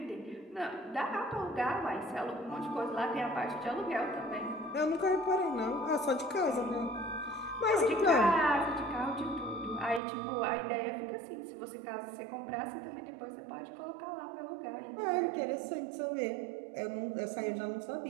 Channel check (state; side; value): drops out; left; at 10.0 s